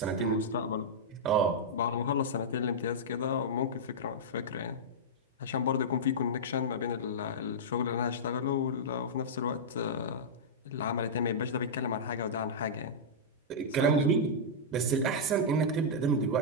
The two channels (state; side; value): normal; both; correlation -0.10